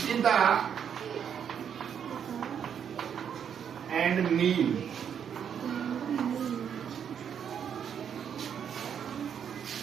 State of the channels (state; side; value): quieter; left; 8.1 dB